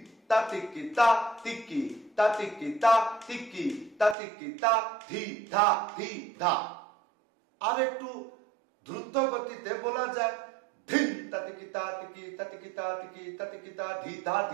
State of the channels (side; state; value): left; drops out; at 4.2 s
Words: তা তিকি তা তিকি তা তিকি তা তিকি তা তিকি তা ধি ধা ধি ধা। আর একটু দ্রুত গতিতে বলা যায়। ধিন তা তিকি তা তিকি তা তিকি তা তিকি তা তিকি তা ধি ধা